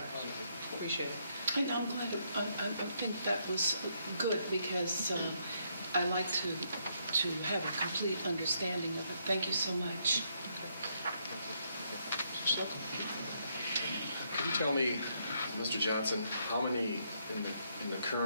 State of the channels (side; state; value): both; inverted; correlation -0.74